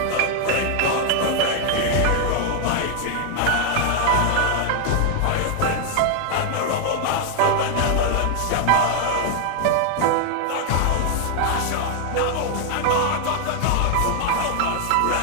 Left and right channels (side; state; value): both; different; correlation 0.00